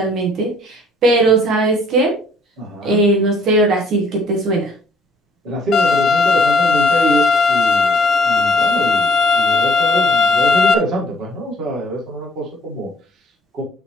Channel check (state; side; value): normal; both; correlation 0.60